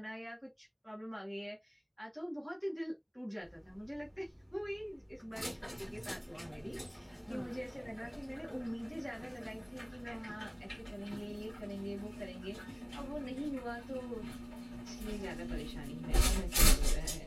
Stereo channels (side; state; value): both; identical; correlation 1.00